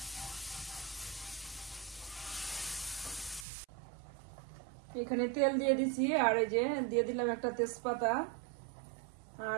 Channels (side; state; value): left; drops out; at 3.5 s